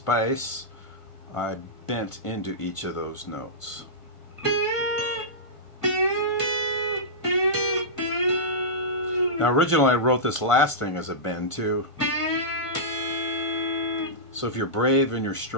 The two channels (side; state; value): right; late; 1.5 ms